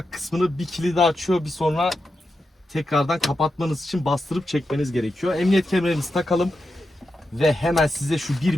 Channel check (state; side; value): normal; both; correlation 0.88